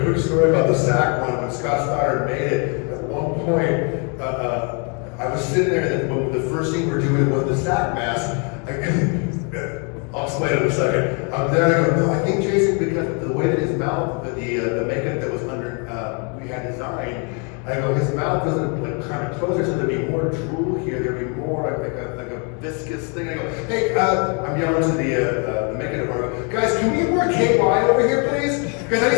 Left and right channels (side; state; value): right; quieter; 36.1 dB